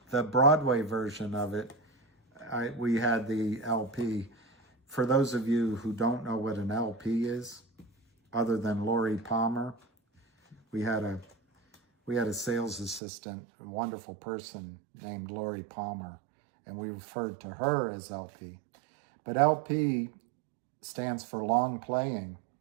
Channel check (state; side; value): drops out; left; at 13.0 s